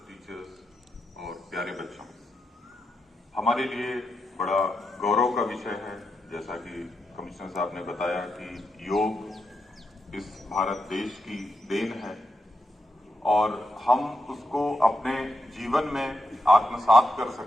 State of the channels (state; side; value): normal; both; correlation 0.85